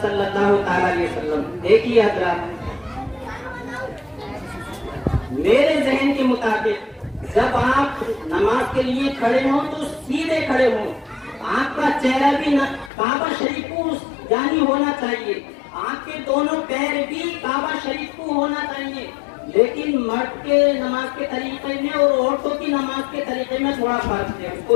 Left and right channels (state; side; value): drops out; right; at 12.9 s